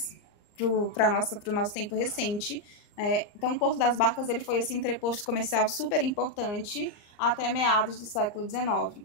para o nosso tempo recente. Então, o Porto das Barcas ele foi esse entreposto comercial super importante até meados do século XIX.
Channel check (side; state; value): right; late; 39 ms